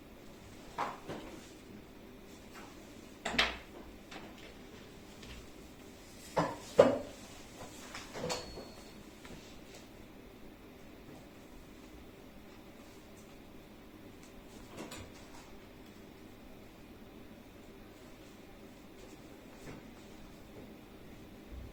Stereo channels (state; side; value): identical; both; correlation 1.00